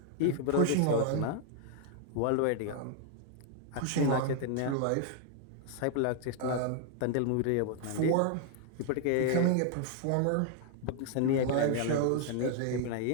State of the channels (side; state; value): both; different; correlation 0.00